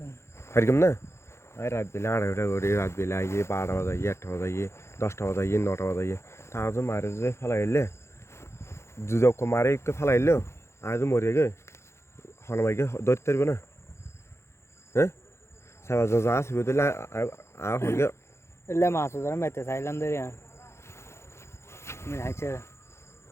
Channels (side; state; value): right; late; 0.13 ms